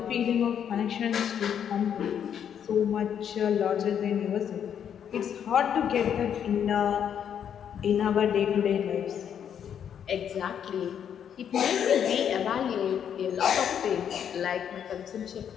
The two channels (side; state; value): right; quieter; 8.6 dB